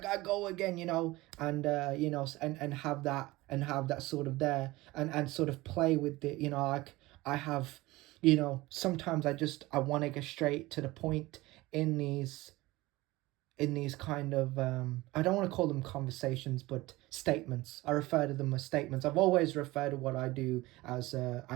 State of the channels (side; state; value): left; quieter; 19.8 dB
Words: go again, and and have that sort of there, and sort of play with it, like I have, sometimes I want to get straight to the point in these kind of I don't want to call them conversations, but statements. I refer to them as statements. I've always referred to what I do as